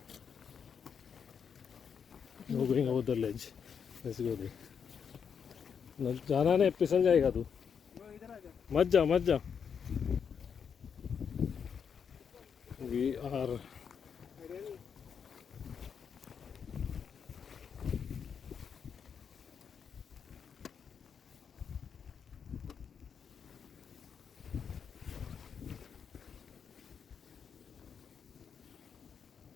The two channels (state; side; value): quieter; right; 7.0 dB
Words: No going over the ledge. Let's go there. जाना नहीं, फिसल जाएगा तू. मत जा. We are